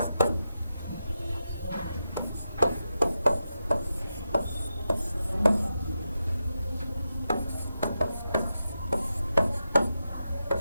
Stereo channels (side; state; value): both; inverted; correlation -0.89